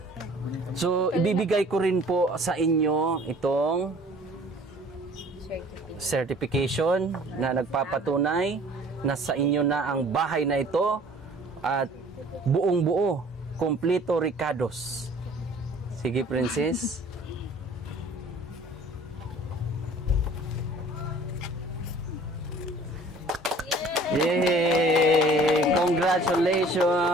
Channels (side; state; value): both; normal; correlation 0.51